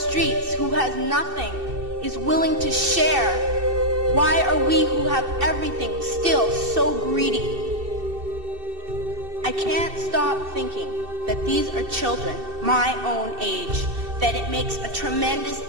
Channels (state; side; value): late; left; 2.7 ms